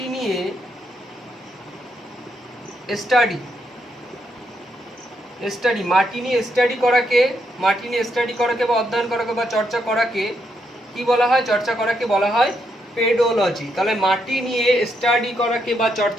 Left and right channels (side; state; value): both; normal; correlation 0.78